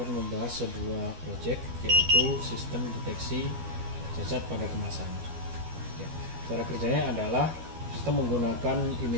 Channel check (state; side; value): late; left; 12 ms